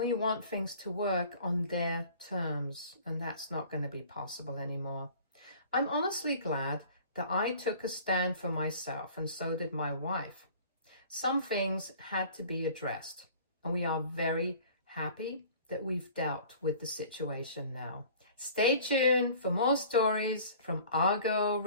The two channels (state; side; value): inverted; both; correlation -0.47